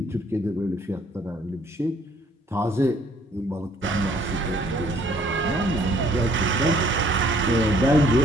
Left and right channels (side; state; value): both; normal; correlation 0.61